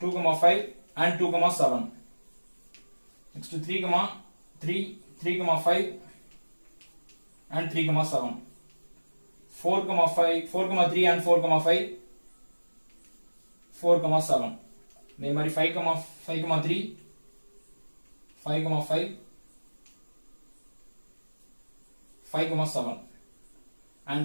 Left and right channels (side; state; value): both; inverted; correlation -1.00